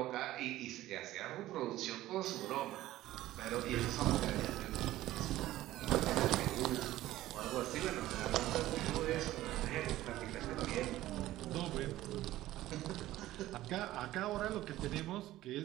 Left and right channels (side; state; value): left; quieter; 15.3 dB